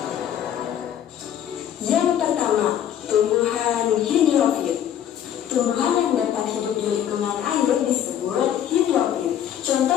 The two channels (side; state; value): right; quieter; 10.1 dB